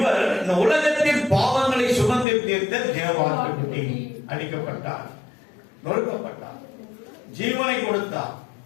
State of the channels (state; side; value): drops out; right; at 2.2 s